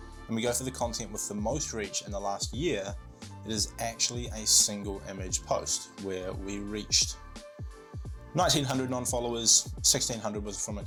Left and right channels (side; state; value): both; identical; correlation 1.00